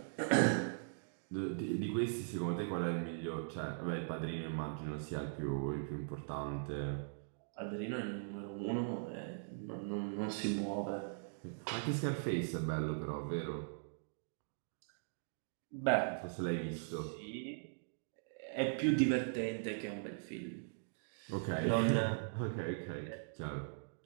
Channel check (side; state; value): left; silent; digital silence